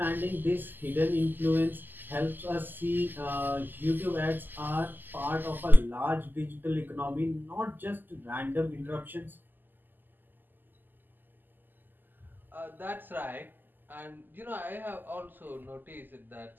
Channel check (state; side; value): late; left; 0.089 ms